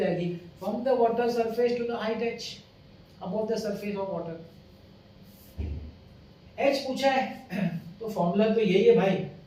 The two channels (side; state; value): both; identical; correlation 1.00